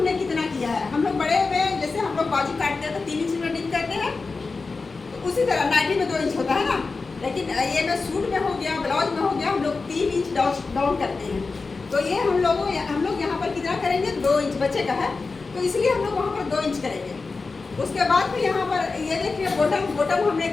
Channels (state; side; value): quieter; right; 4.1 dB